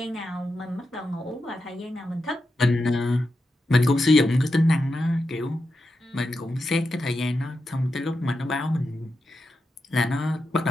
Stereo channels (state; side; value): normal; both; correlation 0.88